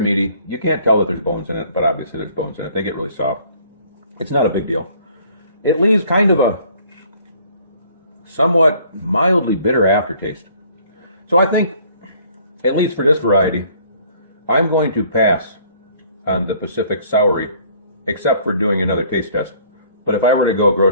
You can't tell that there's bones in it, but obviously there's bones in it. They get really soft. It's not a big deal. It leaves kind of a somewhat mildly bitter aftertaste. So I think, at least for this variety, I'm going to pass on the Pacific Saury, except for doing another taste test. But if I were to go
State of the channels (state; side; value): inverted; both; correlation -0.58